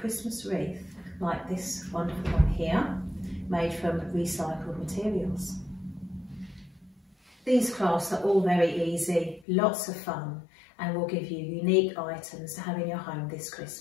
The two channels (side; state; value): right; drops out; at 9.5 s